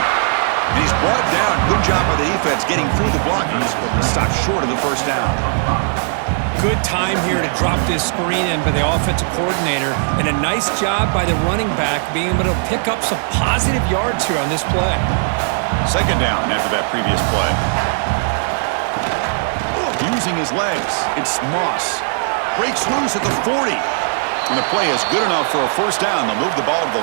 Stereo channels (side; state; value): left; silent; 67 dB below the other